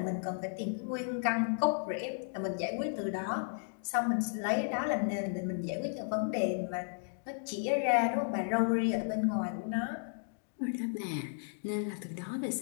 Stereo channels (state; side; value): silent; right; digital silence